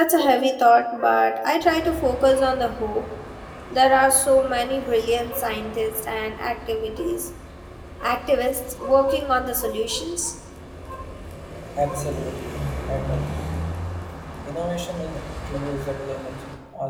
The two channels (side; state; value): both; identical; correlation 1.00